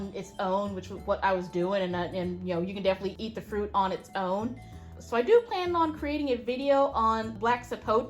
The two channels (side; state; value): both; identical; correlation 1.00